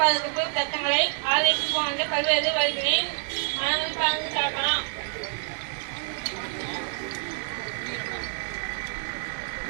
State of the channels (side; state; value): left; silent; 60 dB below the other